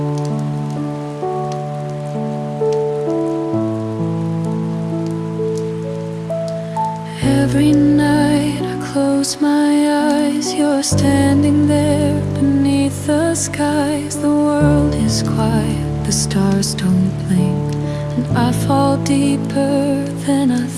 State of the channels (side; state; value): both; identical; correlation 1.00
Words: Every night I close my eyes, you're standing there beneath the skies. The world is quiet, the stars don't blink, and I fall deeper than I